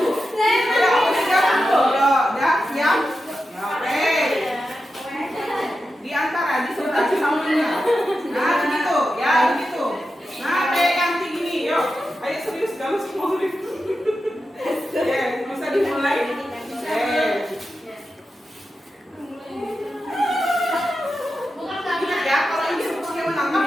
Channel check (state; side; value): normal; both; correlation 0.90